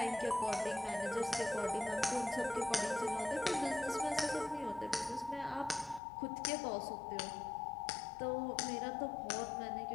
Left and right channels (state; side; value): drops out; right; at 6.0 s